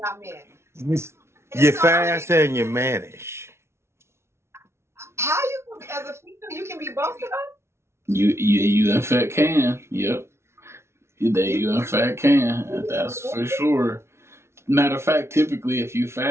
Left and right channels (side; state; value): left; late; 0.13 ms